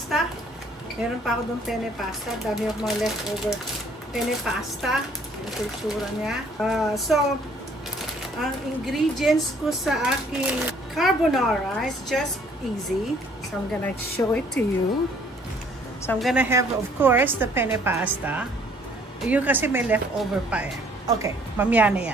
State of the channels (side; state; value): both; normal; correlation 0.60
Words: Meron pa ako doon penne pasta. Dami ako mga leftover penne pasta. Ito yung tsura niya. So, ang ingredients ko sa aking carbonara is just easy. So, I'm gonna show it to you. So, I'm gonna have, of course, the penne pasta. Yun kasi may leftover pa eh. Okay, mamaya na